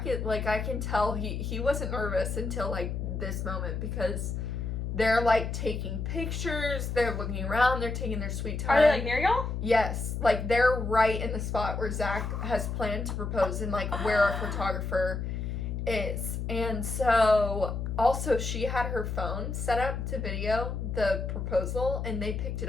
like, I can tell he wasn't nervous until like this moment, because they're like taking pictures, they're looking around, they're taking their sweet time. Are they like near y'all? Yes. Like, they're right in the spot where Zach has planned to propose, and like where our photographer is. And so also she had her phone set up to video the proposal, and they picked it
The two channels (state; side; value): noise; left; hum, 3 dB below the sound